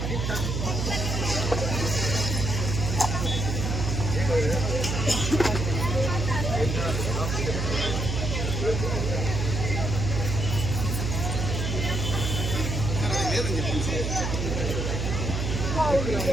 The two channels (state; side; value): noise; right; hum, 2 dB below the sound